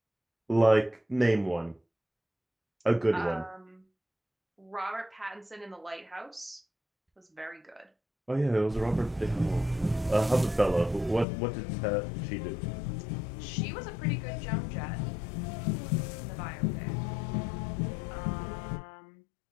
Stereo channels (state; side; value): drops out; right; at 11.2 s